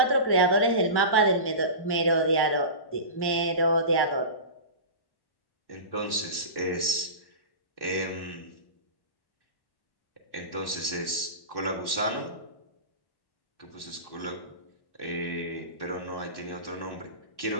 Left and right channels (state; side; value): late; right; 1.1 ms